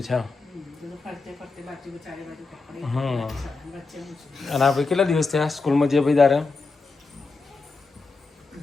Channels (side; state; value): right; quieter; 4.0 dB